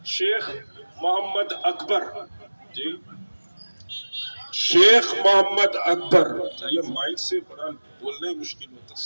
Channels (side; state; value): both; inverted; correlation -1.00